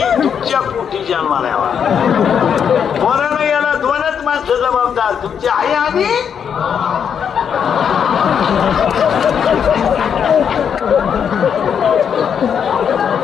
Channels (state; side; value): quieter; right; 7.6 dB